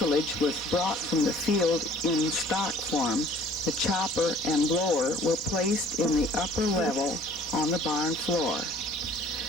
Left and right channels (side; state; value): both; normal; correlation 0.53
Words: was brought from the field in stock form, the chopper and blower were placed in the upper level on the barn floor.